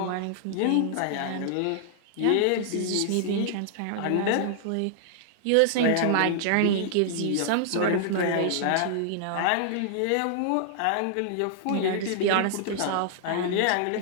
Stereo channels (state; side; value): different; both; correlation -0.01